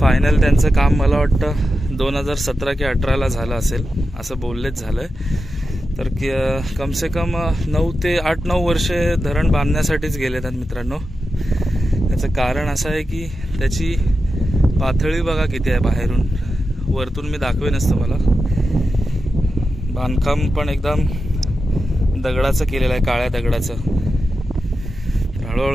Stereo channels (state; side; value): normal; both; correlation 0.90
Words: त्यांचं काम मला वाटतं 2017 की 18ला झालं असेल असं बोललेच झालं आहे. तर कमसे कम 9 ते 8-9 वर्षे धरण बांधण्यासाठीच गेले आहेत मित्रांनो. त्याचं कारण असं आहे की त्याची पातळी बघा किती आहे बाहेरून, वरतून मी दाखवेनच तुम्हाला. बांधकाम पण एकदम दगडाचं केलेलं आहे, काळ्या दगडाचं.